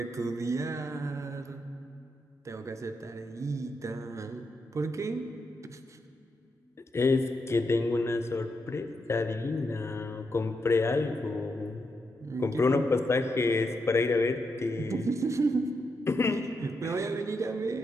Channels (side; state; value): both; normal; correlation 0.83